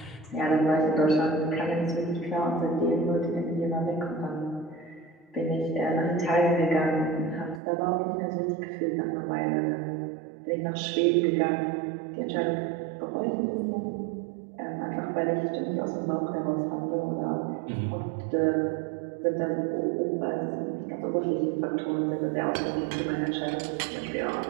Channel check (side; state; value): left; drops out; at 7.6 s